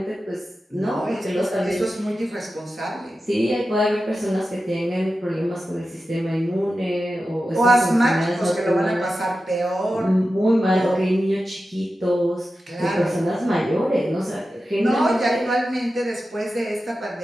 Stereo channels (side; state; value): both; normal; correlation 0.92